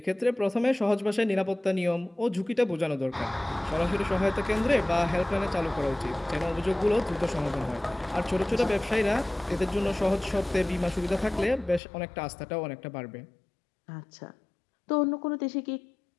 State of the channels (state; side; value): drops out; right; at 11.8 s